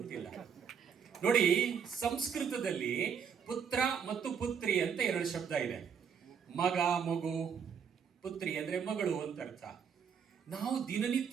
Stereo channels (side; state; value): left; quieter; 7.1 dB